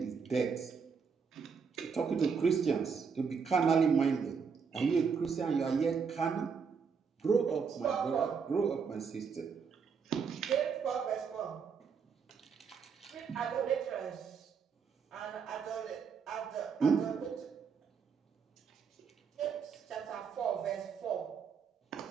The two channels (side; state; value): left; quieter; 6.0 dB